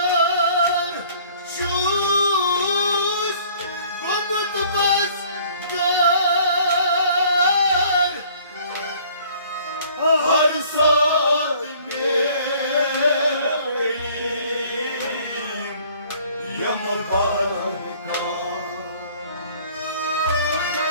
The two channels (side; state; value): both; inverted; correlation -0.55